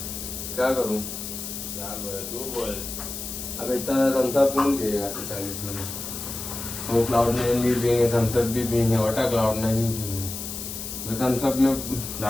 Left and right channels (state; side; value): noise; left; hiss, 7 dB below the sound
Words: क्या करूं? अब इतना थम्स अप कौन पिएगा 40 में? वो क्लाउड नाइन भी पिएंगे, थम्स अप भी पिएंगे, वाटर क्लाउड नाइन भी पिएंगे. थम्स अप में